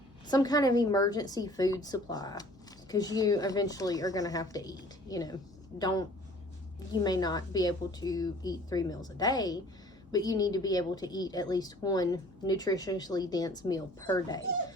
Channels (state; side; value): normal; both; correlation 0.52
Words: kind of emergency food supply, because you eventually are going to have to eat. You may not be able to eat 3 meals a day, but you need to be able to eat at least one nutritionally dense meal per day.